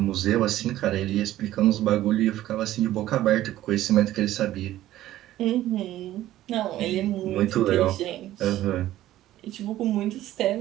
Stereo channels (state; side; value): quieter; left; 14.2 dB